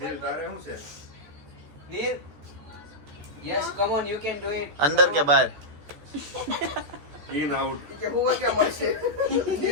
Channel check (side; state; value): left; late; 14 ms